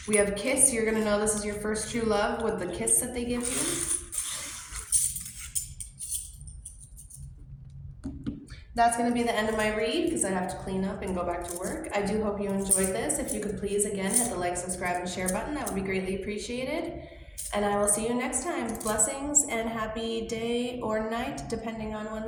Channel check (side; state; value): both; identical; correlation 1.00